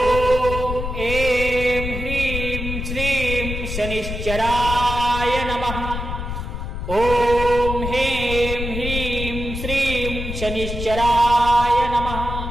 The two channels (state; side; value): noise; left; rumble, 5 dB below the sound